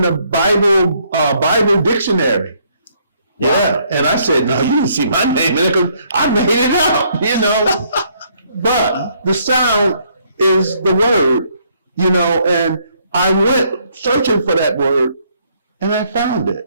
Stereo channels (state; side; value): inverted; both; correlation -0.69